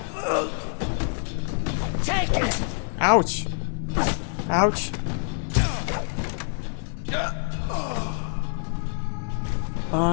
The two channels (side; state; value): right; silent; 61 dB below the other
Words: Take it! Ouch! Ouch!